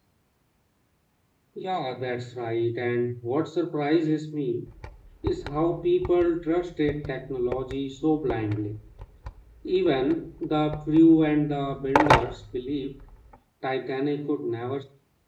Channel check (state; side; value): identical; both; correlation 1.00